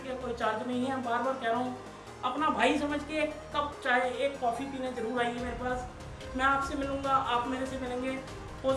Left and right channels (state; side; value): identical; both; correlation 1.00